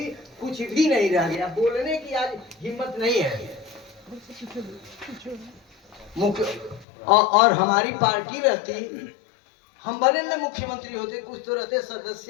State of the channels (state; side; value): drops out; right; at 6.9 s